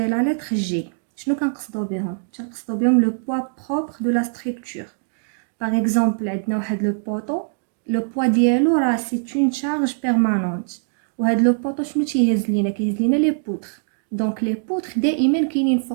لتر جي. شنو كنقصدو بهم؟ كنقصدو بهم لو بوا بروبر دو لا ستركتور. باغ اكزومبل عندنا واحد لو بوطو، لو بوا ديالو راه سي اون شارج بيرمانونت، وهاد لو بوطو شنو تيهز لينا؟ كيهز لينا لي بوتر. دونك لي بوتر دائما كاينين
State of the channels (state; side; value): silent; left; digital silence